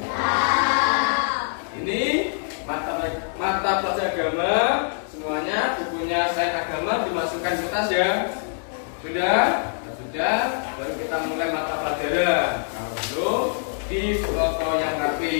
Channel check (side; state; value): right; silent; 62 dB below the other